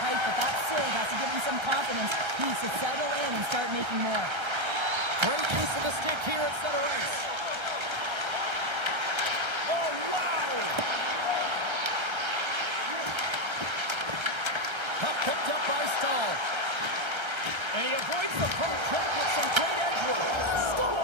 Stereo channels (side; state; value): left; late; 1.3 ms